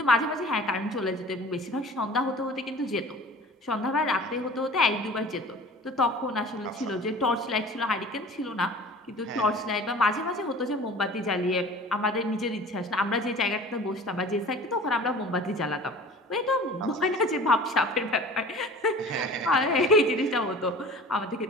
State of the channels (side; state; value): both; normal; correlation 0.42